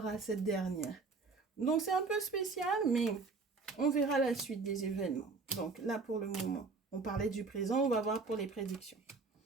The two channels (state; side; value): quieter; left; 4.3 dB